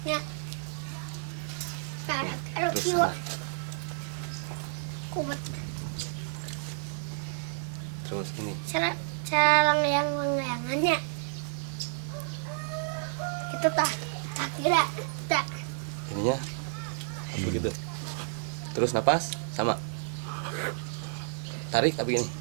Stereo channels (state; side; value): silent; left; digital silence